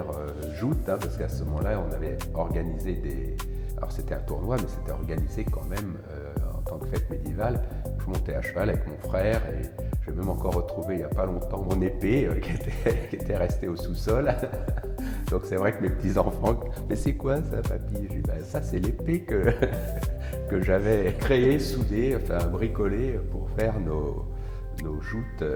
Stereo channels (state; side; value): identical; both; correlation 1.00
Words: joutes, hein, parce qu'à ce moment-là, on avait organisé des... Alors c'était un tournoi, mais c'était organisé quand même en tant que fête médiévale. Je montais à cheval avec mon frère et j'ai même encore retrouvé il n'y a pas longtemps mon épée qui était restée au sous-sol. Donc c'est vrai que mes petits-enfants, mais c'est quoi ça, papy? J'ai dit, ben, ça c'est l'épée que j'avais créée, soudée, enfin bricolée pour faire nos joutes